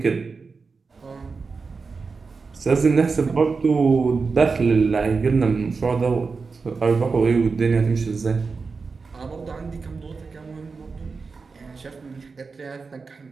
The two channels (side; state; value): left; quieter; 4.6 dB